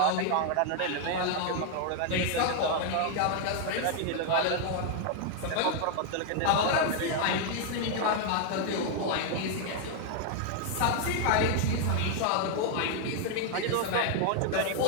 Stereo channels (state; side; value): different; both; correlation 0.00